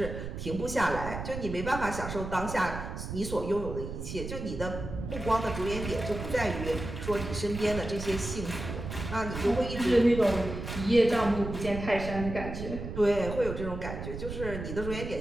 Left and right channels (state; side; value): noise; right; rumble, 7 dB below the sound